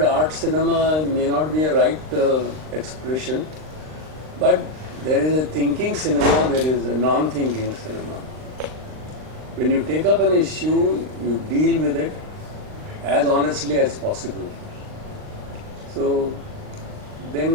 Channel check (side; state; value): left; late; 39 ms